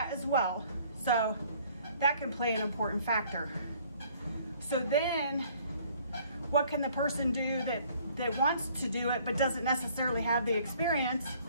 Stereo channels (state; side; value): inverted; both; correlation -0.58